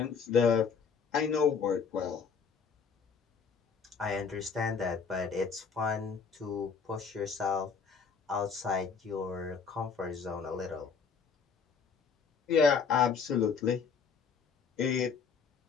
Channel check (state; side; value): quieter; right; 5.9 dB